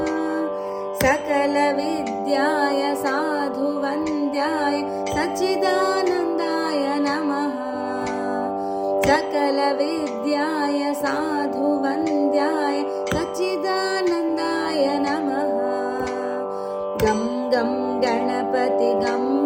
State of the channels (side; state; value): both; identical; correlation 1.00